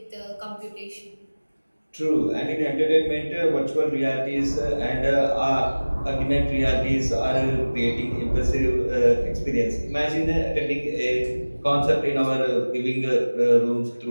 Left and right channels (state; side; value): inverted; both; correlation -1.00